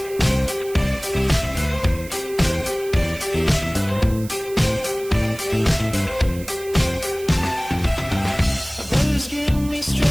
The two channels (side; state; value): right; noise; hiss, 17 dB below the sound